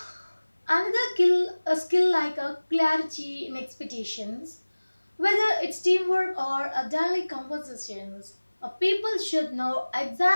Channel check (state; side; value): inverted; both; correlation -1.00